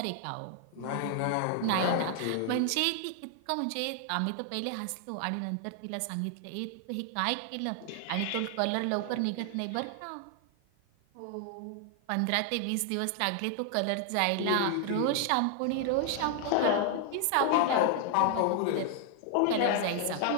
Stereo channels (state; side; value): different; both; correlation 0.00